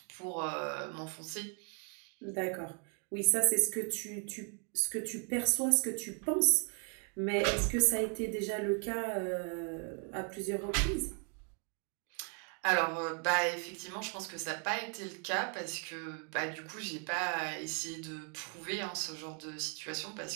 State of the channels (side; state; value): left; quieter; 39.3 dB